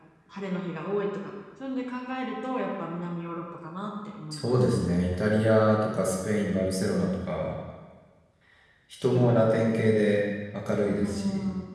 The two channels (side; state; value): both; identical; correlation 1.00